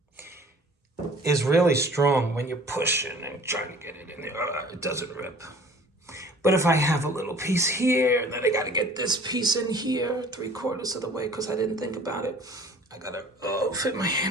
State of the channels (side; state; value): both; normal; correlation 0.49